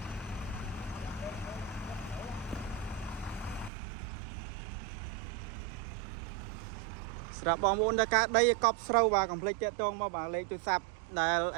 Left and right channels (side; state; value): left; drops out; at 3.7 s